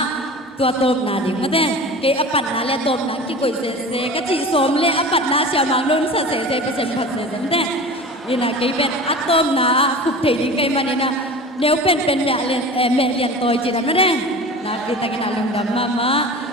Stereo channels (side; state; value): both; normal; correlation 0.36